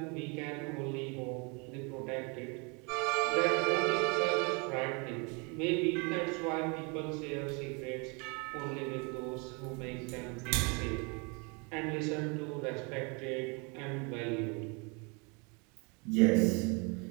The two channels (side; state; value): left; quieter; 32.0 dB